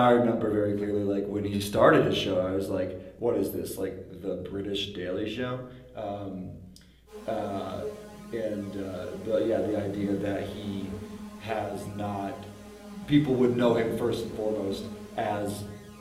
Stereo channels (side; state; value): both; identical; correlation 1.00